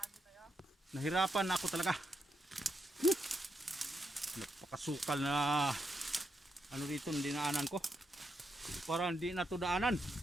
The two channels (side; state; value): both; normal; correlation 0.82